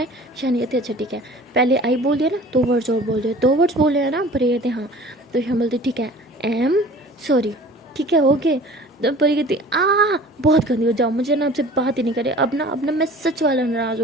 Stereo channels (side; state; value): both; normal; correlation 0.45